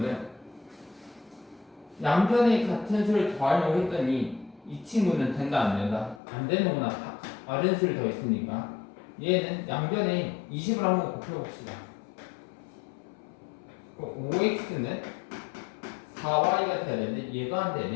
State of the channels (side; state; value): right; drops out; at 6.2 s